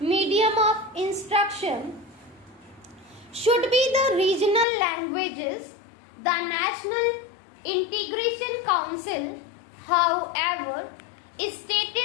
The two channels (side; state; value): right; drops out; at 4.7 s